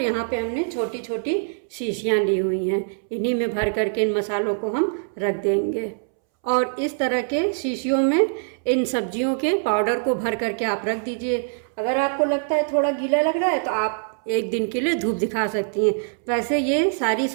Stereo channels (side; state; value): left; silent; 63 dB below the other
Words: यहाँ पे हमने छोटी छोटी शीशियाँ ली हुई हैं, इन्हीं में भर करके इन मसालों को हम रख देंगे। और इस तरह के शीशियों में इन सब्जियों के पाउडर को भर करके आप रख दीजिए। अगर आपको लगता है थोड़ा गीला लग रहा है तो आप एक दिन के लिए धूप दिखा सकती हैं। वैसे ये सारी